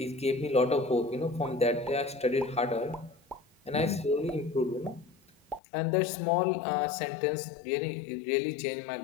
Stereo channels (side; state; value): right; drops out; at 5.6 s